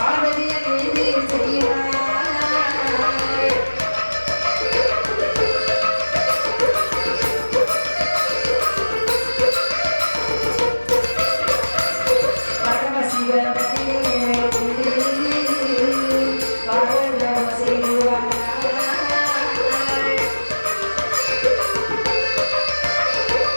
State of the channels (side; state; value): both; inverted; correlation -1.00